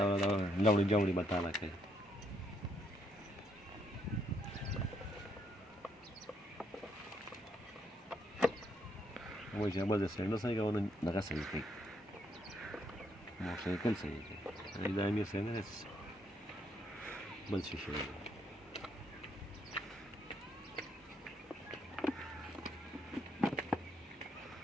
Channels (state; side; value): normal; both; correlation 0.73